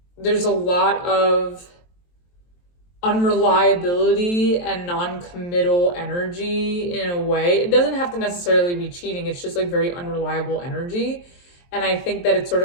there's a lot of unreliability and non-committal energy in a way. It doesn't have to necessarily be cheating. It's just like very unreliable energy. And I think that it's sort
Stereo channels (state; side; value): late; right; 23 ms